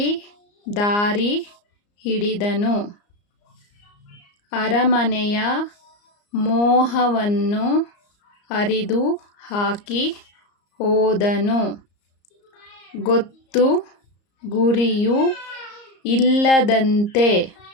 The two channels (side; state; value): right; late; 34 ms